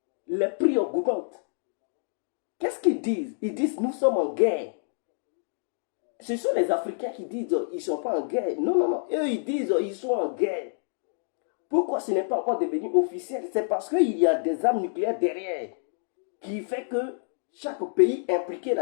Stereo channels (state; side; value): silent; right; digital silence